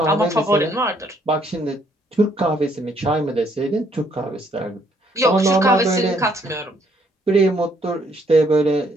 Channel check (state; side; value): normal; both; correlation 0.68